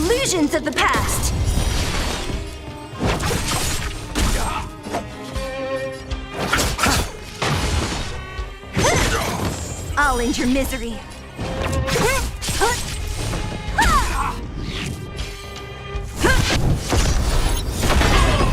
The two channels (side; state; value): both; identical; correlation 1.00